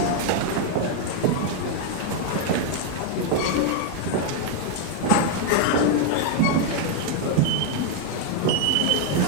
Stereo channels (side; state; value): both; different; correlation 0.01